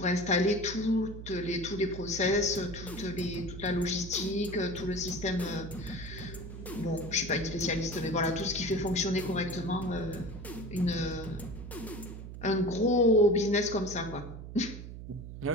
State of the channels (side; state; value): right; noise; hum, 11 dB below the sound